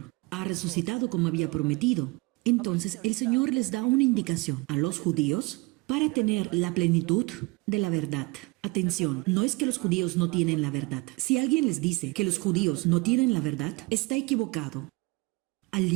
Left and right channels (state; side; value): quieter; left; 25.3 dB